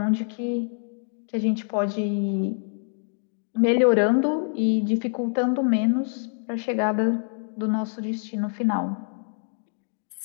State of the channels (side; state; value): right; silent; digital silence